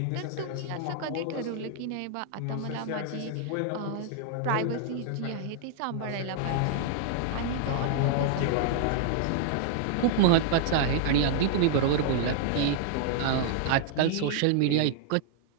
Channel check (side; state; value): both; different; correlation -0.01